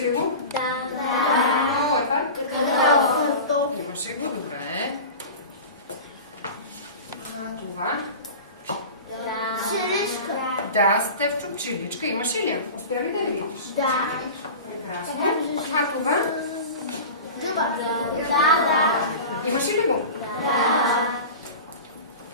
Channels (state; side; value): inverted; both; correlation -0.33